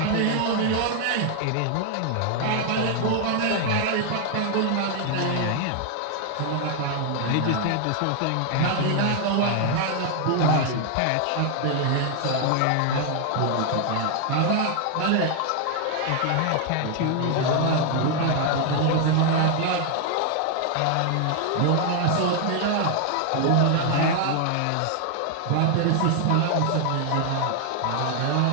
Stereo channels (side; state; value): both; different; correlation 0.00